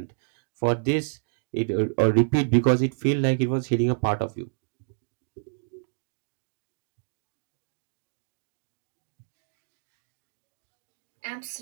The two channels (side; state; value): left; silent; digital silence